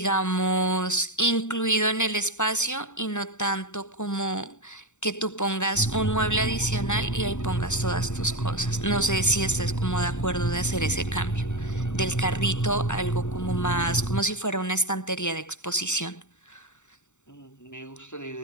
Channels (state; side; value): late; right; 0.84 ms